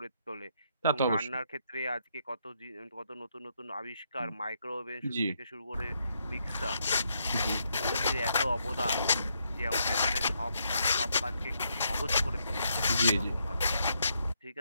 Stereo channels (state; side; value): inverted; both; correlation -0.77